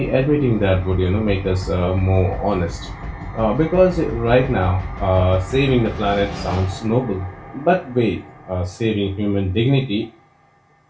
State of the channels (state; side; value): identical; both; correlation 1.00